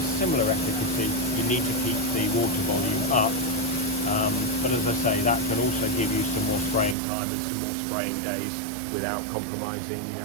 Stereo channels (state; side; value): drops out; left; at 7.0 s